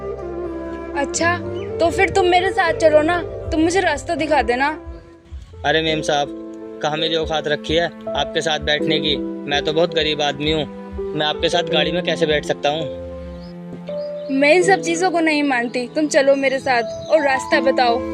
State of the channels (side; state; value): both; identical; correlation 1.00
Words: अच्छा तो फिर तुम मेरे साथ चलो ना, तुम मुझे रास्ता दिखा देना। अरे मेम साहब, कहाँ मेरी औकात रखी है आपके साथ बैठने की? मैं तो बहुत गरीब आदमी हूँ, मैं आपके साथ गाड़ी में कैसे बैठ सकता हूँ? मैं इन सब चीजों को नहीं मानती, तुम चलो मेरे साथ और रास्ता बताओ।